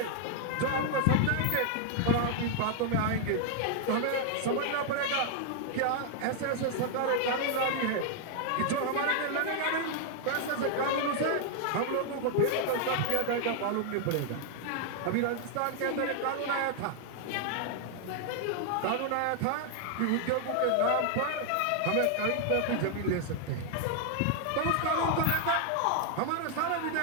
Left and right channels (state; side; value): different; both; correlation 0.00